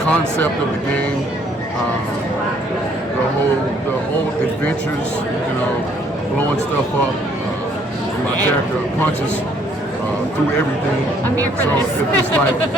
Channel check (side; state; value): both; normal; correlation 0.64